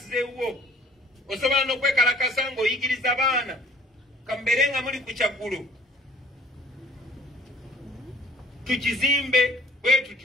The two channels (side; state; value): both; normal; correlation 0.54